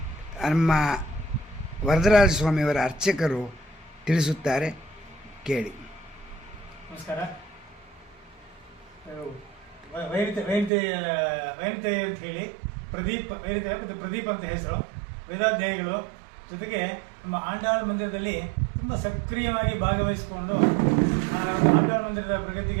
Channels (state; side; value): drops out; left; at 10.7 s